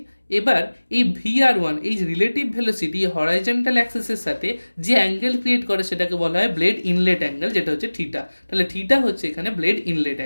এবার এই VR1 এই রিলেটিভ ভেলোসিটি হরাইজন্টাল অ্যাক্সিসের সাথে যে অ্যাঙ্গেল ক্রিয়েট করে সেটাকে বলা হয় ব্লেড ইনলেট অ্যাঙ্গেল, যেটা হচ্ছে থিটা। তাহলে থিটা হচ্ছে এখানে ব্লেড ইনলেট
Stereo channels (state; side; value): inverted; both; correlation -1.00